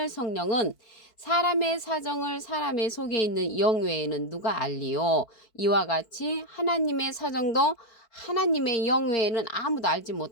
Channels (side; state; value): right; late; 4.5 ms